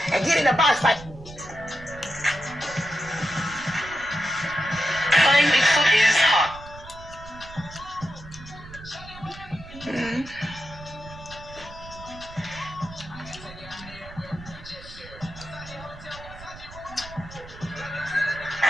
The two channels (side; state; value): right; noise; rumble, 16 dB below the sound